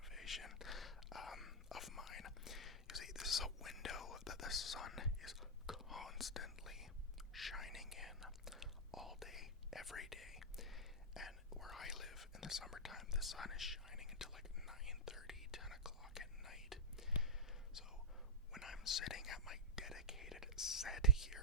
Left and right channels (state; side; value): normal; both; correlation -0.09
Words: of mine. You see, this is a window that the sun is constantly shining in all day, every day. And where I live in the summertime, the sun is shining until like 9:30, 10 o'clock at night. So when I'm sitting at my dedicated set